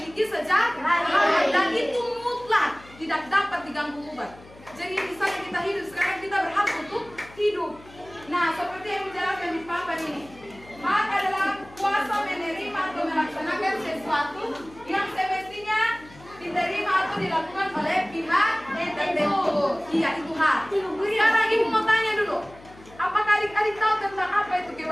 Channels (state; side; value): noise; left; hum, 22 dB below the sound